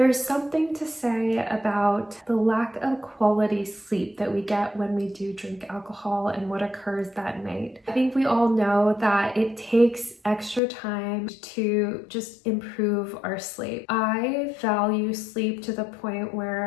something to say about the lack of quality sleep that we get when we do drink alcohol and what occurs that night. I think we all know that it takes extra time to just improve our sleep. I value sleep to the point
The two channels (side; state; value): right; drops out; at 10.6 s